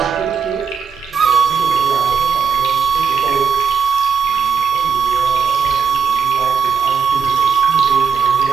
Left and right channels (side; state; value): left; quieter; 6.3 dB